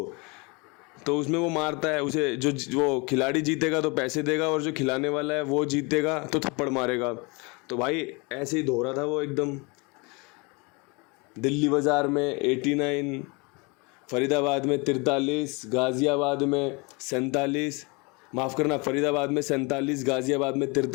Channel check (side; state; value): right; quieter; 28.8 dB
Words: तो उसमें वो मारता है उसे, जो वो खिलाड़ी जीतेगा तो पैसे देगा और जो खिलाने वाला है वो जीतेगा तो थप्पड़ मारेगा। तो भाई ऐसे ही धो रहा था वो एकदम। दिल्ली बाज़ार में 89, फरीदाबाद में 43, गाज़ियाबाद में 47, माफ़ करना, फरीदाबाद में 47, गाज़ियाबाद में